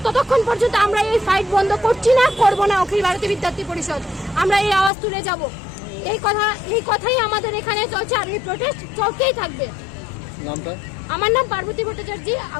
ততক্ষণ পর্যন্ত আমরা এই ফাইট বন্ধ করবো না। অখিল ভারতীয় বিদ্যার্থী পরিষদ আমরা এই আওয়াজ তুলে যাব। এই কথাই আমাদের এখানে চলছে, আর এই প্রোটেস্ট চলতেই থাকবে। আমার নাম পার্বতী ভট্টাচার্য,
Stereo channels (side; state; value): right; drops out; at 4.9 s